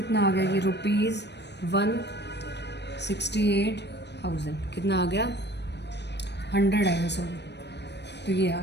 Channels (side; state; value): right; late; 0.50 ms